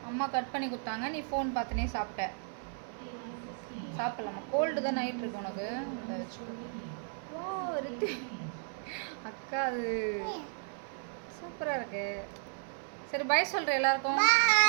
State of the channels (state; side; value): silent; left; 55 dB below the other